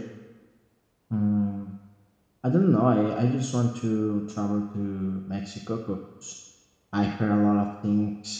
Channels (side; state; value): both; identical; correlation 1.00